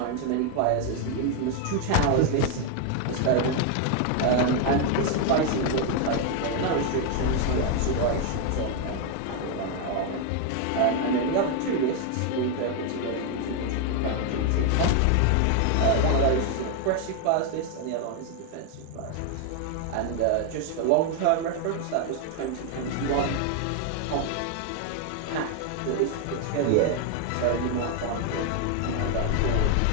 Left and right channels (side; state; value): both; different; correlation 0.01